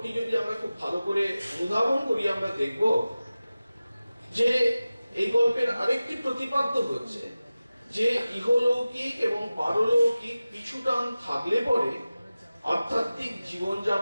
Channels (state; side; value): inverted; both; correlation -0.96